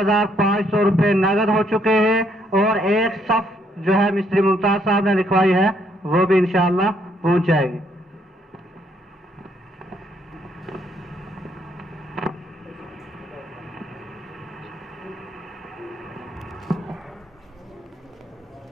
روپے نقد ہو چکے ہیں، اور ایک صف جو ہے مستری ممتاز صاحب نے لکھوائی ہے وہ بھی انشاءاللہ پہنچ جائے گی۔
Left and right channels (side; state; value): both; normal; correlation 0.71